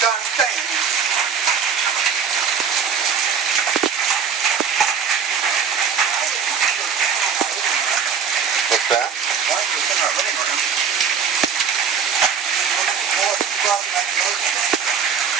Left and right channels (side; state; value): left; quieter; 6.7 dB